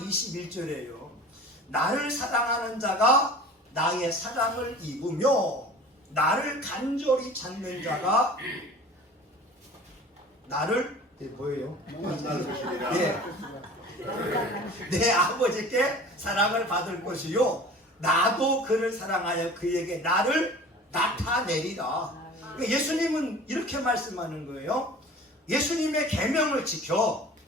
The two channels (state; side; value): normal; both; correlation 0.42